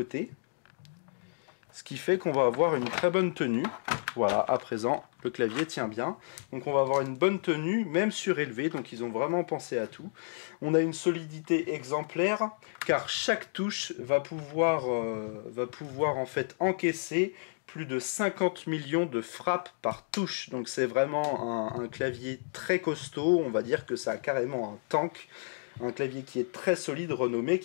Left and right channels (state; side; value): silent; right; digital silence